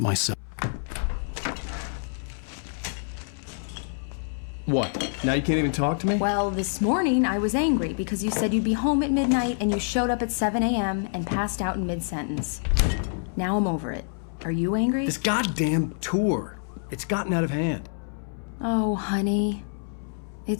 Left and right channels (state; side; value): silent; right; 60 dB below the other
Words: myself. What? Now you can't even talk to me? Well, this morning I was angry because you said you'd be home at midnight and you showed up at 7 a.m. and passed out in mid-sentence. Now I'm over it. Are you angry? This goddamn tour. It's gotten out of hand. Oh, honey.